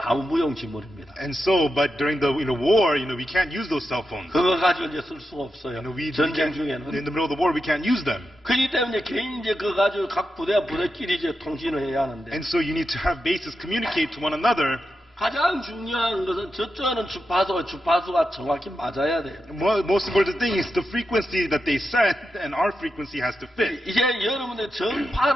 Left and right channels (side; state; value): both; normal; correlation 0.88